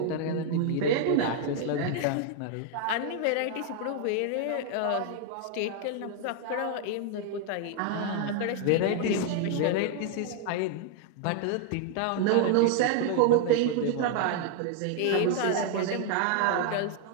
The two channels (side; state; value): both; different; correlation 0.00